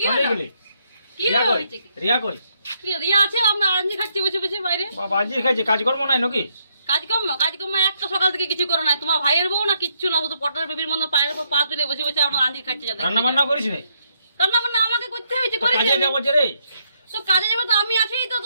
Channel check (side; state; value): both; inverted; correlation -0.75